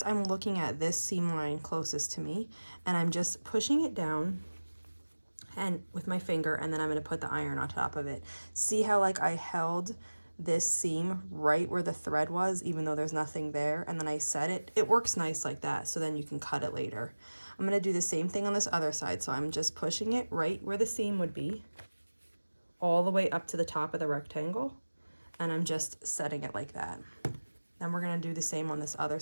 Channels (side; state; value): both; inverted; correlation -1.00